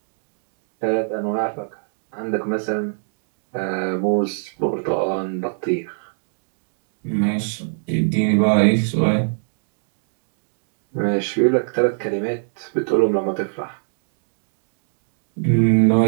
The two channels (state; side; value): silent; left; digital silence